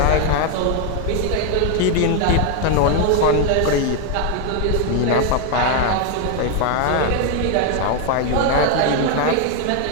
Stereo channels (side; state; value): both; different; correlation 0.01